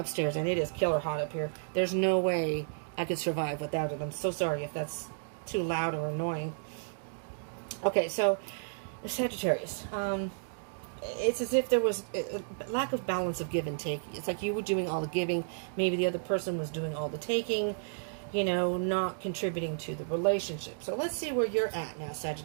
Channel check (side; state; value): left; silent; digital silence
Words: and it is killer hot up here. There's no way I could survive without it. I'm so sorry if that's too loud or annoying. Okay, so Sagittarius. It's as if there was a lack of balance of give and take. It's like you were doing all the giving, maybe the other person was doing all the taking, you know, not contributing to the relationship. So let's see where you're at now,